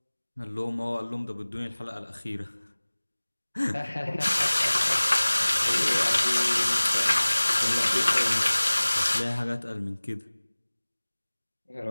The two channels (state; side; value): inverted; both; correlation -1.00